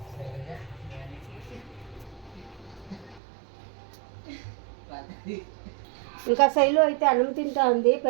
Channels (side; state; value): left; drops out; at 3.2 s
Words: ఇంకా శైలు అయితే అన్నం తింటా ఉంది,